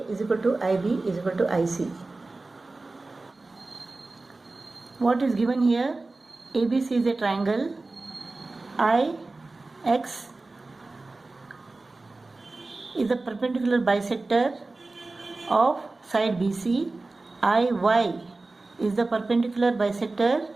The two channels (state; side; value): quieter; left; 3.3 dB